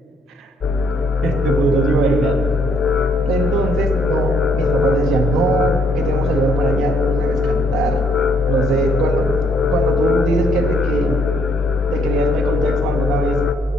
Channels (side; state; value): both; normal; correlation 0.69